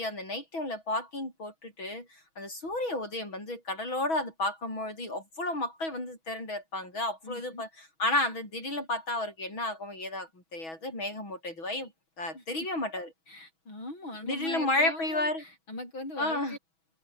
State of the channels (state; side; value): late; right; 6.2 ms